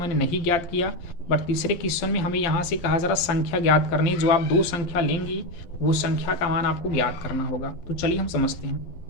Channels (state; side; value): late; right; 12 ms